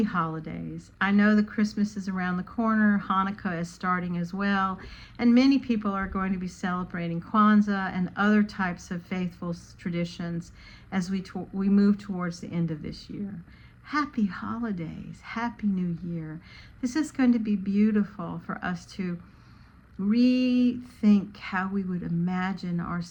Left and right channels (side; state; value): both; identical; correlation 1.00